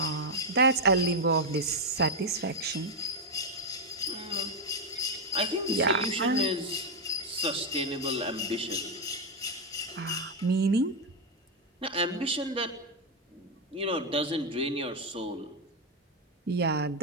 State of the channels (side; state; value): both; normal; correlation 0.03